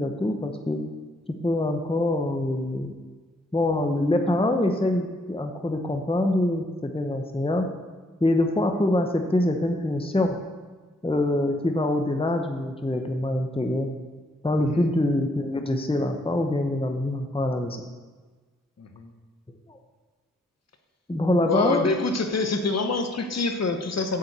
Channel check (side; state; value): both; normal; correlation 0.68